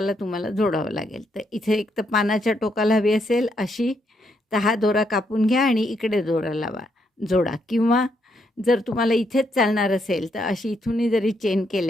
तुम्हाला जोडावं लागेल. तर इथे एक तर पानाच्या टोकाला हवी असेल अशी, तर हा दोरा कापून घ्या आणि इकडे दोरा लावा, जोडा. किंवा जर तुम्हाला इथेच चालणार असेल तर अशी इथूनही जरी चेन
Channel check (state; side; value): normal; both; correlation 0.77